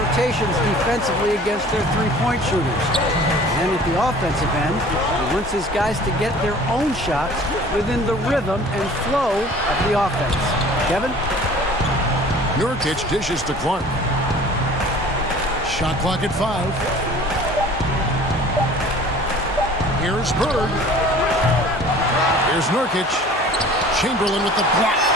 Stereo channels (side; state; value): both; normal; correlation 0.47